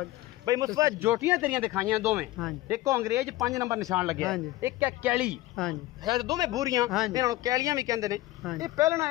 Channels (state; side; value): quieter; right; 17.4 dB